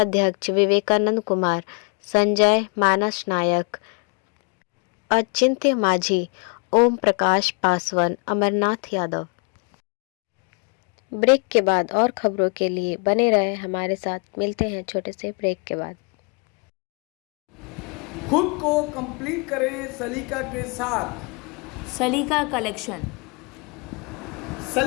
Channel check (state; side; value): quieter; right; 33.3 dB